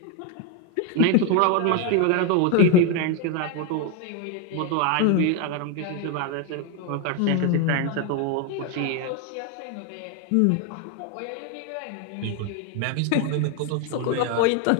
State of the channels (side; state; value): both; different; correlation 0.01